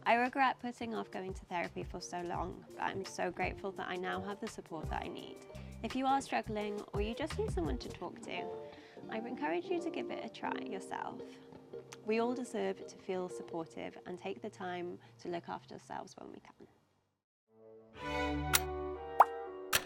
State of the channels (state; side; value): identical; both; correlation 1.00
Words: I regret putting off going to therapy for so long, but I'm so grateful that I now have the support that I need. If you are struggling or you just need someone to talk to, I encourage you to give it a try yourself. We all deserve to feel supportive and take the time to look after ourselves when we can.